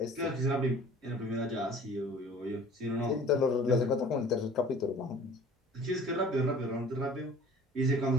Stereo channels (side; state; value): both; normal; correlation 0.47